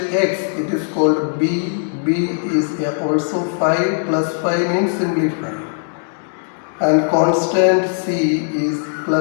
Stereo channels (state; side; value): silent; right; digital silence